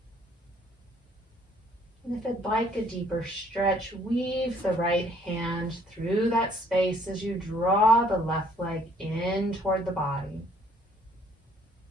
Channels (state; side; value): normal; both; correlation 0.62